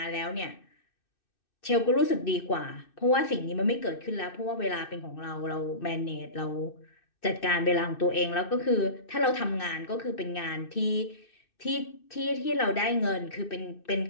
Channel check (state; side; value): late; right; 2.6 ms